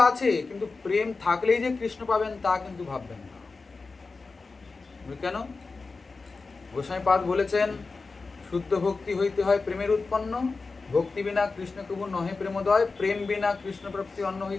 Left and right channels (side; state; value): right; quieter; 4.1 dB